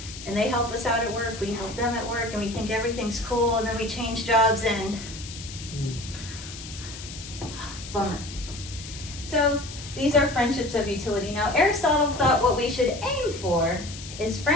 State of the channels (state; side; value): noise; left; hiss, 12 dB below the sound